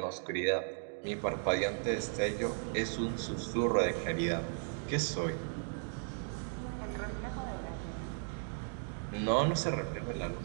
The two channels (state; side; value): silent; left; 54 dB below the other